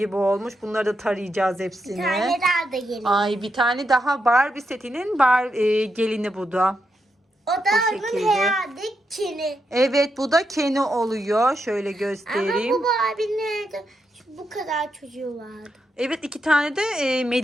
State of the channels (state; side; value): normal; both; correlation 0.83